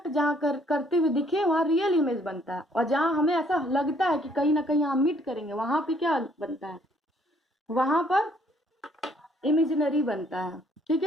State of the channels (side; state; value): both; normal; correlation 0.64